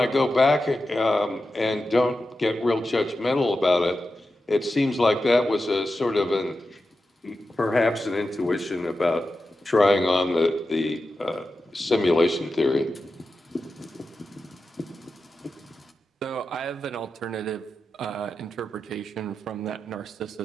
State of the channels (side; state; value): both; normal; correlation 0.91